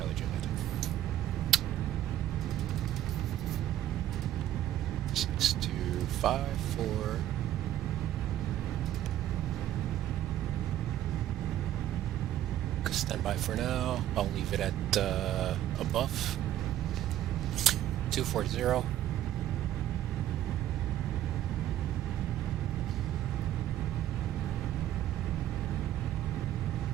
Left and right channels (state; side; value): quieter; left; 12.6 dB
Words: Juliet. 6254. Stand by for now. I'll leave it at above 240.